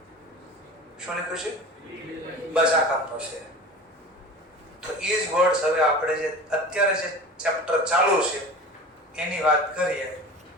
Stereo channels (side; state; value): both; normal; correlation 0.36